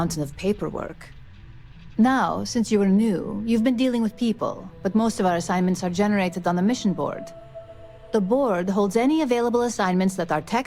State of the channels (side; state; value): both; identical; correlation 1.00